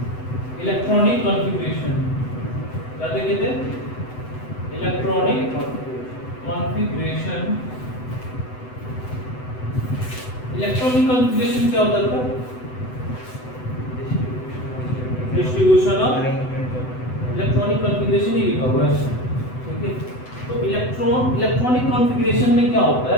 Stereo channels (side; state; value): right; late; 7.9 ms